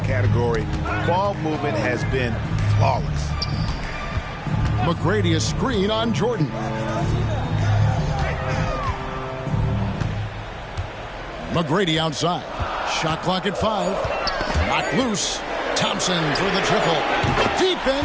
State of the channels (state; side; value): identical; both; correlation 1.00